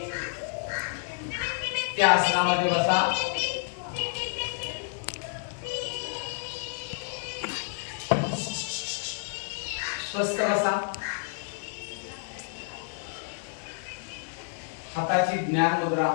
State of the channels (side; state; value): right; silent; digital silence